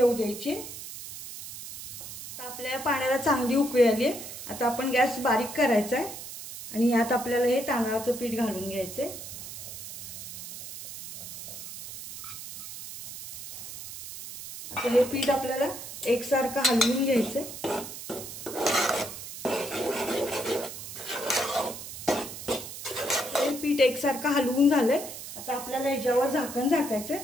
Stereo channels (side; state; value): right; noise; hiss, 10 dB below the sound